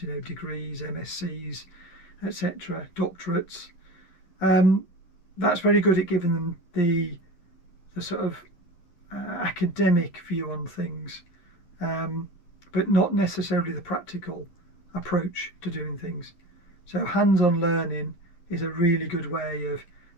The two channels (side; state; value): right; late; 11 ms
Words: degrees, MScs, etc., doctorates. That's very good at giving them the sort of academic view on things, but not necessarily the practical approach to doing things. So hands-on learning is a really good way of